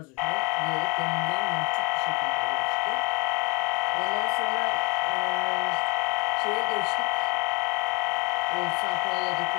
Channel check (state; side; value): quieter; right; 29.2 dB